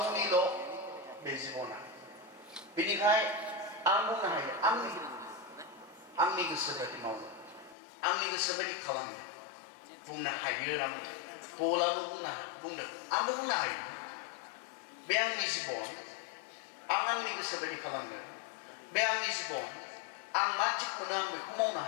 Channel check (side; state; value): right; drops out; at 7.8 s